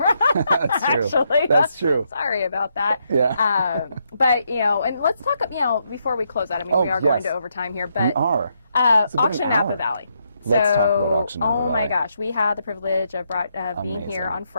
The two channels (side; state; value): both; inverted; correlation -0.78